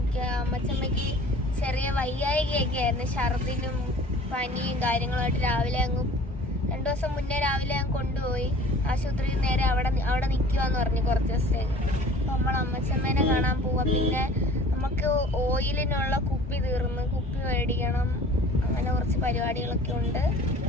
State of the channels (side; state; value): both; normal; correlation 0.46